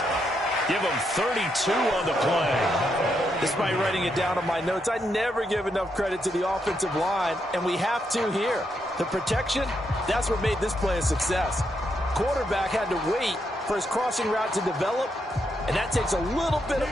Give him 32 on the play. Despite writing it down on my notes, I never give enough credit to the offensive line, and we have to here. The protection, that's what made this play a success. Quarterback had to wait for his crossing route to develop, and that takes a little bit of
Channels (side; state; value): both; normal; correlation 0.80